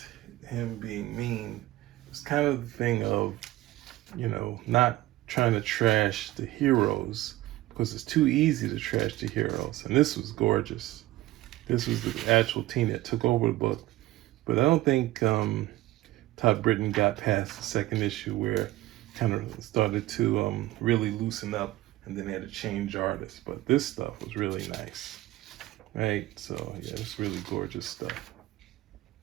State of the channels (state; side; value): quieter; left; 16.7 dB